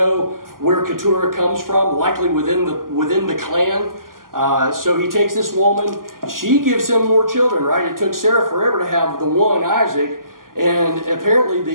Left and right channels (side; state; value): left; late; 0.91 ms